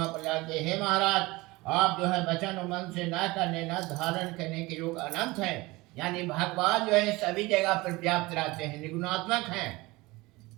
पर जाके, हे महाराज, आप जो है वचन और मन से न करने न धारण करने के योग अनंत है। यानी भगवान जो है सभी जगह पर व्याप्त रहते हैं, निर्गुणात्मक हैं,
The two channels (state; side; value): quieter; left; 21.8 dB